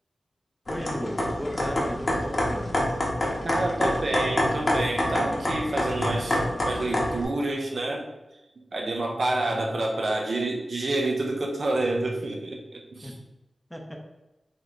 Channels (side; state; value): both; normal; correlation 0.93